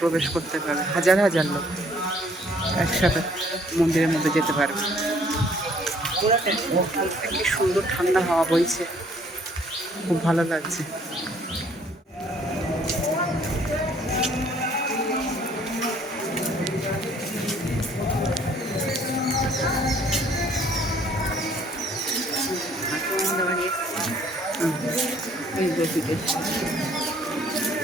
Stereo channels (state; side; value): normal; both; correlation 0.60